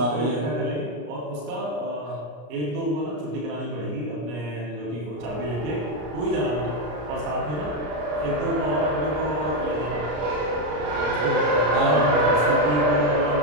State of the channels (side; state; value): left; late; 33 ms